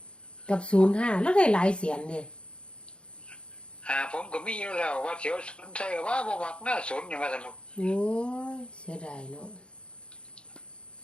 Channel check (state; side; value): late; right; 0.056 ms